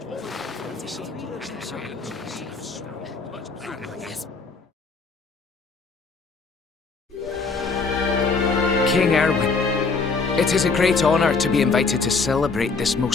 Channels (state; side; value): quieter; right; 4.4 dB